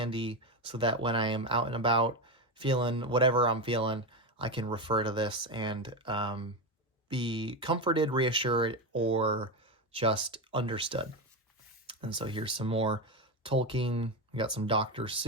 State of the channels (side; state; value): both; normal; correlation 0.14